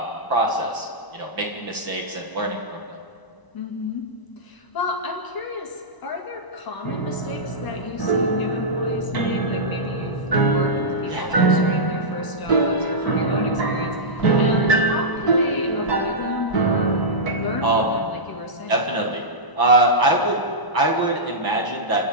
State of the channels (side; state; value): right; late; 1.0 ms